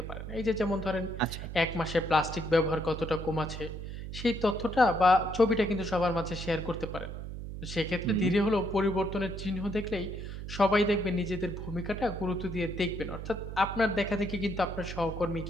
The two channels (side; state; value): right; noise; hum, 8 dB below the sound